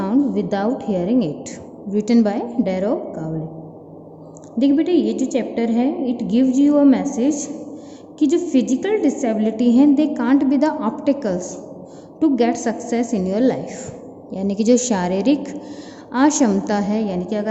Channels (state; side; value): identical; both; correlation 1.00